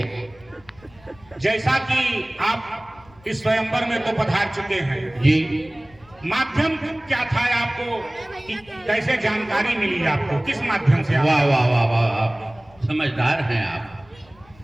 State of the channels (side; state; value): left; noise; rumble, 27 dB below the sound